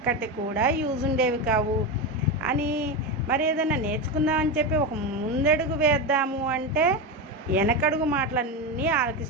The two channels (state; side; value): normal; both; correlation 0.15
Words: కూడా యూజ్ ఉండేవి కావు అని. మరి ఏదైనా నేర్చుకుందామని చెప్పి ఒక ముందడుగు వేద్దాము అంటే వెనకడుగు మాటలన్నీ